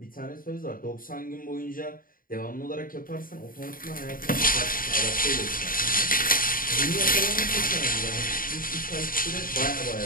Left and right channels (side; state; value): right; late; 0.41 ms